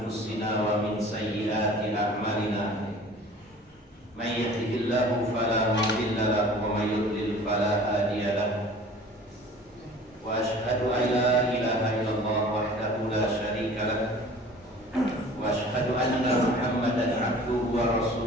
wa min sayyiati a'malina. May yahdihillahu fala mudilla lahu wa may yudlil fala hadiya lahu. Wa asyhadu an la ilaha illallah wahdahu la syarika lahu wa asyhadu anna Muhammadan 'abduhu wa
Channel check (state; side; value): normal; both; correlation 0.45